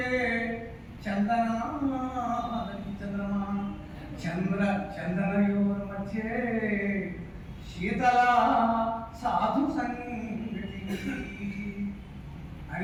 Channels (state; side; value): identical; both; correlation 1.00